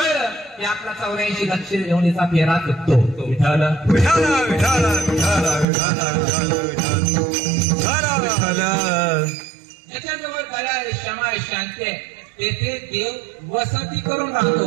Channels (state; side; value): drops out; left; at 5.7 s